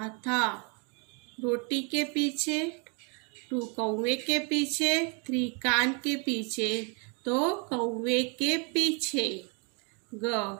था? रोटी के पीछे। 2। कौवे के पीछे। 3। कान के पीछे, तो कौवे के पीछे।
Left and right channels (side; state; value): left; quieter; 35.1 dB